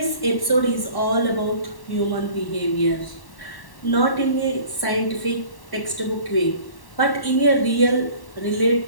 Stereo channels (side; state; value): right; late; 1.1 ms